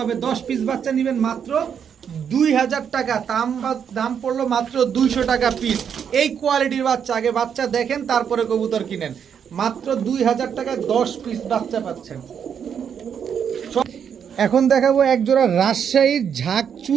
হবে। 10 পিস বাচ্চা নেবেন মাত্র 2000 টাকা। দাম পড়লো মাত্র 200 টাকা পিস। এই কোয়ালিটির বাচ্চা, আগে বাচ্চা দেখেন তারপরে কবুতর কিনেন। মাত্র 2000 টাকায় 10 পিস বাচ্চা পাচ্ছেন। এখন দেখাবো এক জোড়া রাজশাহীর ঝাঁক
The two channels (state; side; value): quieter; left; 7.8 dB